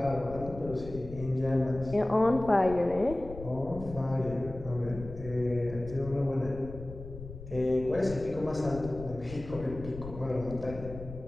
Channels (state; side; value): noise; left; rumble, 12 dB below the sound